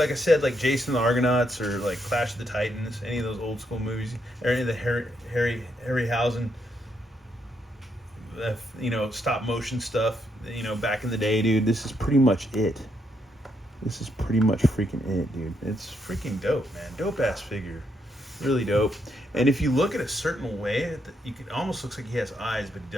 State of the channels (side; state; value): both; normal; correlation 0.77